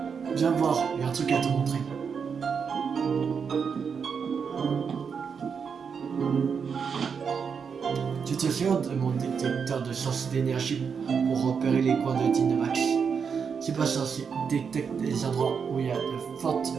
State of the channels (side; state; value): left; quieter; 6.3 dB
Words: Viens voir, il y a un truc à te montrer. Tu te souviens de mon détecteur de source d'énergie pour repérer les coins de Dynamax? C'est pas censé détecter les endroits où il y a de fortes